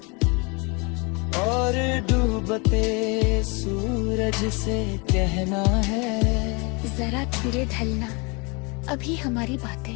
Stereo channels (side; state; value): right; quieter; 30.0 dB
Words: और डूबते सूरज से कहना है जरा धीरे ढलना, अभी हमारी बातें